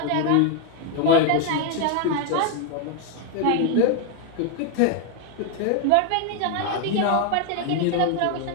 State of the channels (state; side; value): different; both; correlation 0.01